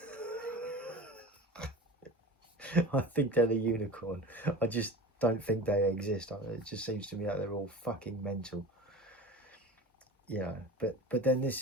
I think they're the unicorn. I just don't think they exist. It just seems to me like they're all fucking mental. You know, but then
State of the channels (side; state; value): both; normal; correlation 0.35